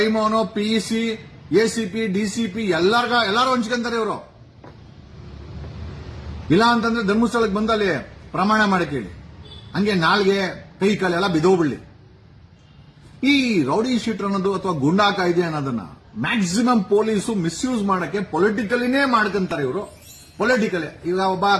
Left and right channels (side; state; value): both; identical; correlation 1.00